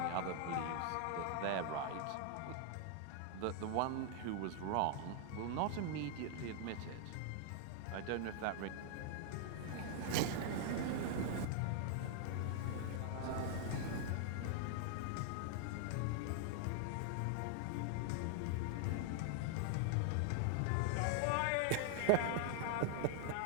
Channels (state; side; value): different; both; correlation 0.00